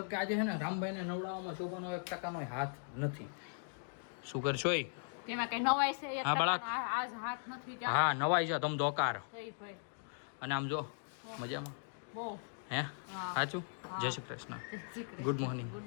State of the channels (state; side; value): silent; right; digital silence